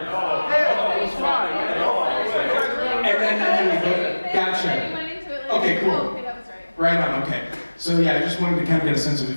was fine. And then gotcha. Okay, cool. Okay, that was right. Right on. Okay. So yeah, I just wanted to kind of get a sense of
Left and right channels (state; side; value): inverted; both; correlation -1.00